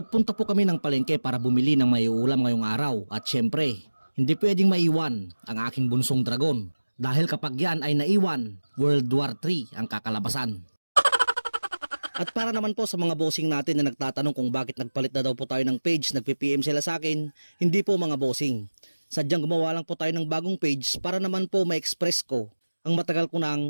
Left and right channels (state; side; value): inverted; both; correlation -1.00